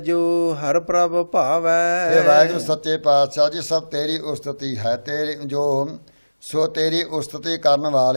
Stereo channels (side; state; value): both; inverted; correlation -1.00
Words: ਹਰ ਪ੍ਰਭ ਭਾਵੈ। ਇਹ ਵਾਹਿਗੁਰੂ ਸੱਚੇ ਪਾਤਸ਼ਾਹ ਜੀ ਸਭ ਤੇਰੀ ਉਸਤਤੀ ਹੈ, ਤੇਰੀ ਜੋ ਸੋ ਤੇਰੀ ਉਸਤਤੀ ਕਰਨ